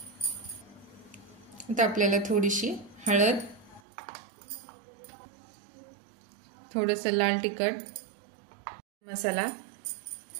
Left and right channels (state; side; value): drops out; left; at 3.8 s